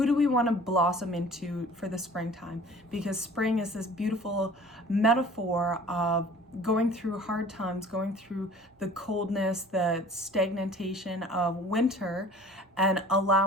do we want to blossom into for the springtime? Because spring is this beautiful metaphor of going through hard times, going through the coldness, the stagnation of winter, and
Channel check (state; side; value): normal; both; correlation 0.46